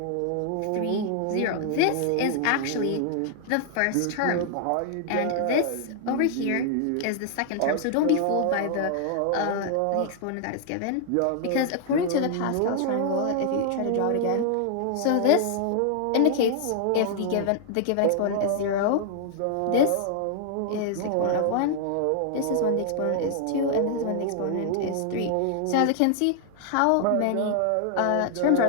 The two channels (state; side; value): different; both; correlation 0.00